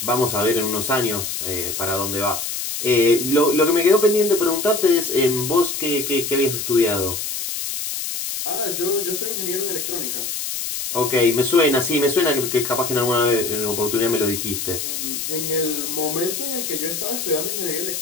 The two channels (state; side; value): noise; left; hiss, 4 dB below the sound